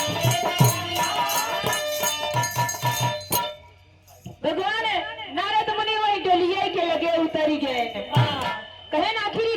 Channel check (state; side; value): identical; both; correlation 1.00